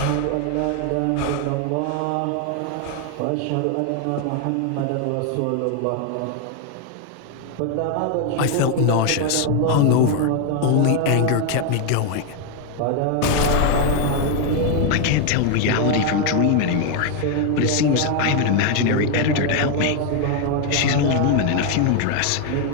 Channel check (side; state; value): both; different; correlation 0.01